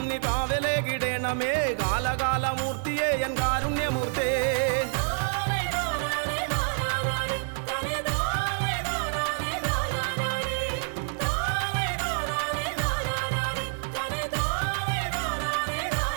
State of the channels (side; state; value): left; silent; digital silence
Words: നീ കാവലേകിടേണമേ കാലകാലമൂർത്തിയെ എൻ കാരുണ്യമൂർത്തേ